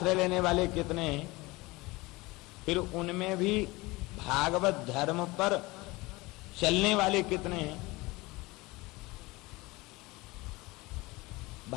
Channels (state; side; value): quieter; right; 22.2 dB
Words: लेने वाले कितने हैं? फिर उनमें भी भागवत धर्म पर चलने वाले कितने हैं?